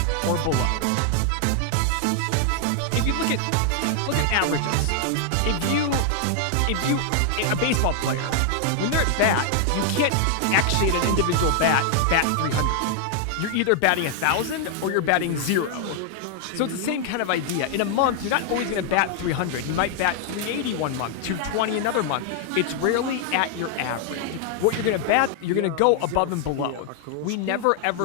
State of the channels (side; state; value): both; different; correlation 0.00